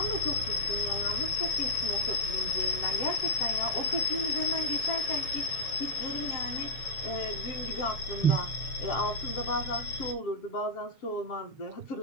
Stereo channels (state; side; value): late; right; 7.1 ms